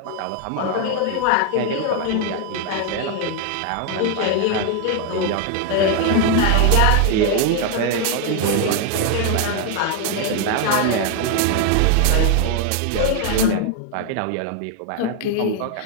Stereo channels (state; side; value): different; both; correlation 0.01